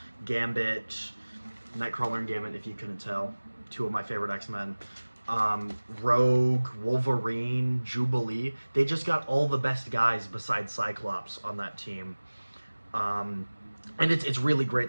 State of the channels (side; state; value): both; inverted; correlation -1.00